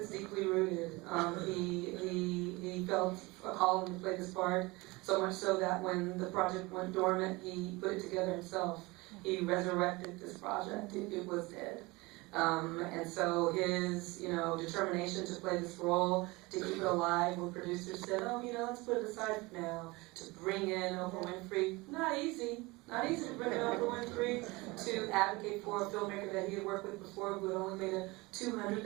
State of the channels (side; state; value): left; quieter; 23.3 dB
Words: deeply rooted. He felt a calling to play this part, so much so that when the project went dormant, he put it together himself. He resurrected this project. It was dead. And so his, determination to play this role, to keep it alive, when producers said, let's put it aside for now, to bring in Oprah Winfrey, not easy to bring in Oprah Winfrey, to advocate for a filmmaker that he had worked with before who had only made a